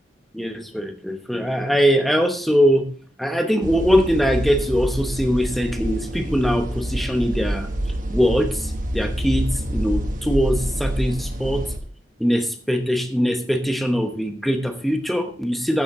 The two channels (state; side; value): normal; both; correlation 0.89